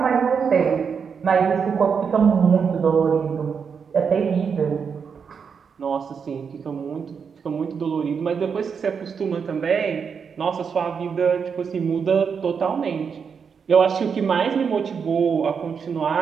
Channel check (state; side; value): quieter; left; 6.3 dB